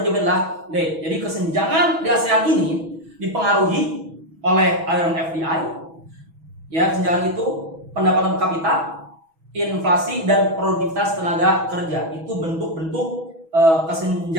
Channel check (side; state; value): left; late; 6.2 ms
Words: adalah D. Jadi kesenjangan di ASEAN ini dipengaruhi oleh aliran FDI. Ya, kesenjangan itu pendapatan per kapita, inflasi dan produktivitas tenaga kerja. Itu bentuk-bentuk